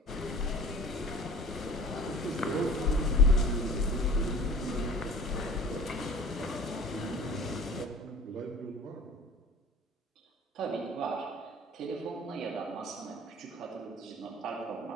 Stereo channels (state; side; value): normal; both; correlation 0.45